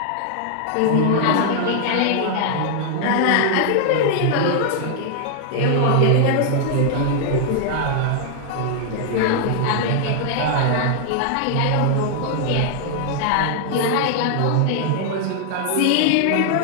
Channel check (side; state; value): both; different; correlation 0.00